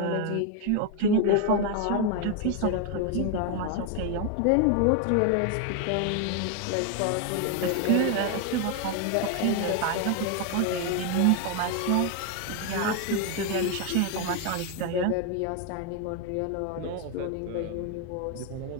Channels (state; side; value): different; both; correlation 0.01